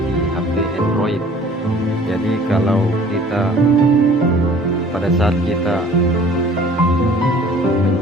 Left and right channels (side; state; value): both; normal; correlation 0.51